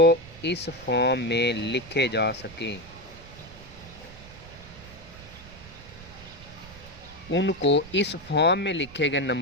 इस फॉर्म में लिखे जा सकें उनको, इस फॉर्म में लिखे गए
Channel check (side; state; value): right; noise; rumble, 18 dB below the sound